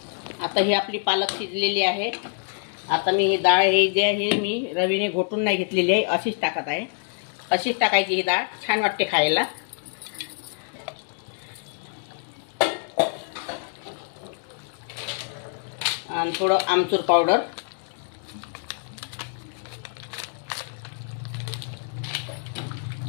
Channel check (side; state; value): right; silent; digital silence